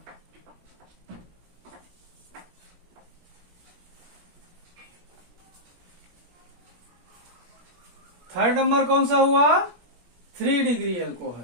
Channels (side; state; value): left; late; 17 ms